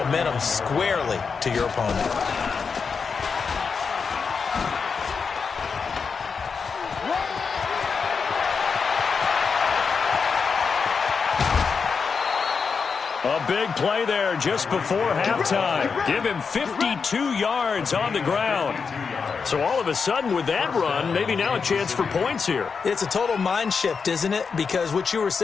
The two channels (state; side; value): quieter; right; 5.5 dB